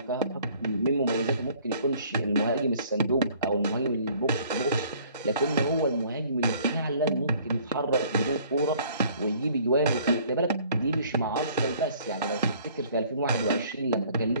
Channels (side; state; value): both; inverted; correlation -0.56